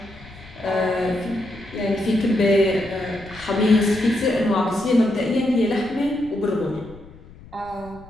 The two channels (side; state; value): left; noise; rumble, 20 dB below the sound